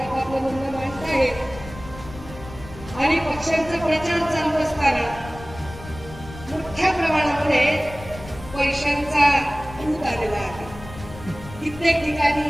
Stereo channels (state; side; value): noise; left; rumble, 15 dB below the sound